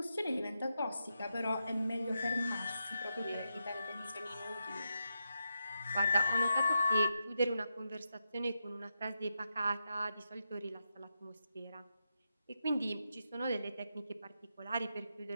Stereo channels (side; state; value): both; inverted; correlation -0.86